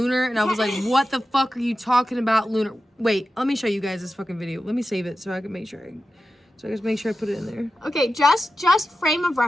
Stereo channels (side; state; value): both; normal; correlation 0.92